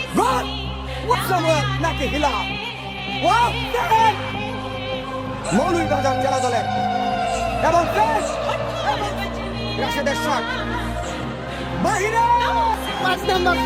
গোল সামুয়েল নাকি হিলাল ওয়াও মৌলভীবাজার জেলা দলের এবং রাশেদের শট বাহিরে 5 নম্বর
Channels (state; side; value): identical; both; correlation 1.00